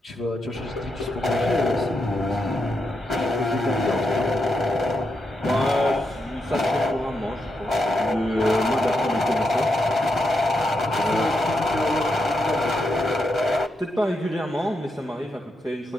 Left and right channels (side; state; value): both; normal; correlation 0.83